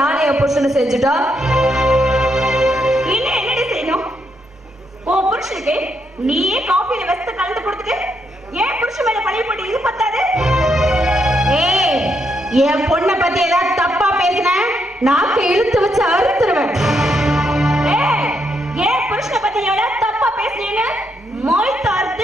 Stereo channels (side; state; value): both; normal; correlation 0.78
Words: என் புருஷனை செஞ்சுட்டா என்ன என்னடி செய்யணும்? உன் புருஷனுக்கு நீயே காஃபியில வெஸ்த கலந்து கொடுத்துட்டு ஏன் புருஷன் மேல பழைய போட்டு இது பத்தாது? ஏய், என் பொண்ணை பத்தி ஏதாவது தப்பா பேசின நாக்கு இழுத்து வச்சு அறுத்துருவேன். ஏன் புருஷனை பத்தி எவ்வளவு தப்பா பேசுறீங்க? மொய்